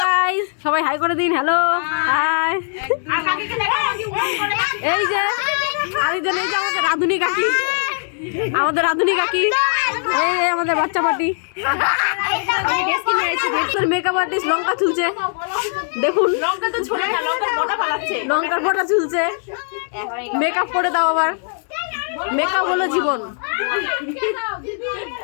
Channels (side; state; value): right; silent; digital silence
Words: গাইস, সবাই হাই করে দিন। Hello hi. এই যে আরেকজন, এই যে আমাদের রাধুনি কাকি, এই আমাদের বাচ্চা পার্টি, মেকআপ আর্টিস্ট লঙ্কা চুলছে। দেখুন লঙ্কার ফোঁটা চুলছে। মেকআপ করে দাও আবার। মেকআপ হলো জীবন।